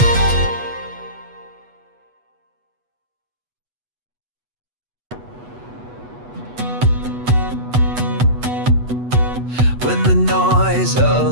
When the noise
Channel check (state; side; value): late; left; 8.2 ms